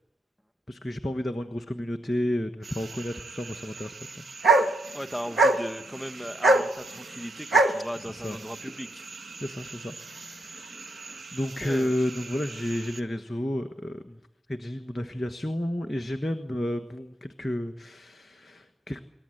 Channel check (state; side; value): normal; both; correlation 0.80